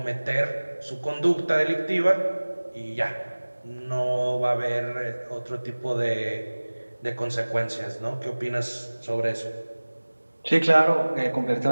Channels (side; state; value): both; inverted; correlation -1.00